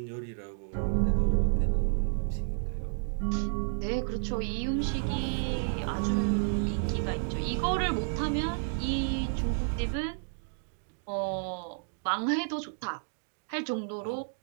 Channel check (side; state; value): left; silent; digital silence